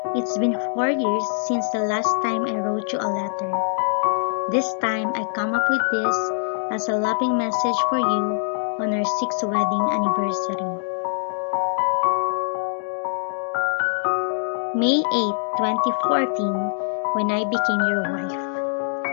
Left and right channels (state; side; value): silent; right; digital silence